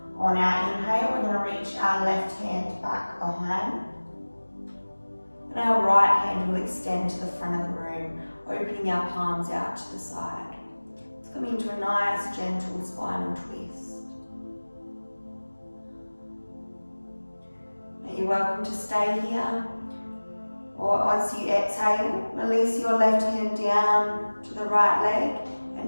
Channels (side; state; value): both; inverted; correlation -1.00